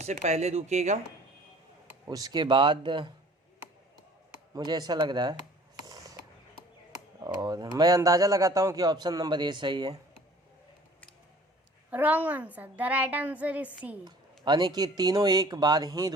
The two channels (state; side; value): normal; both; correlation 0.50